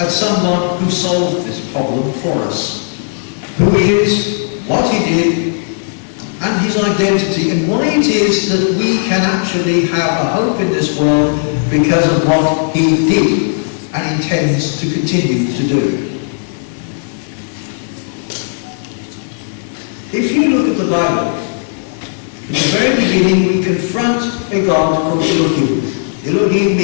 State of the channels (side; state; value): right; silent; digital silence